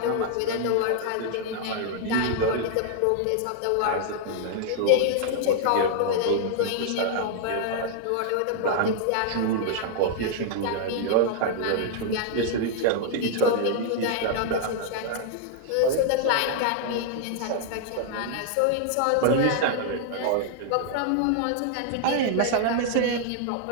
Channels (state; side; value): different; both; correlation -0.01